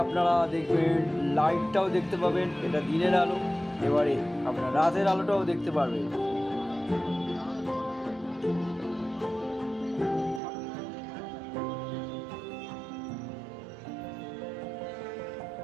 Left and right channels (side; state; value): left; drops out; at 10.4 s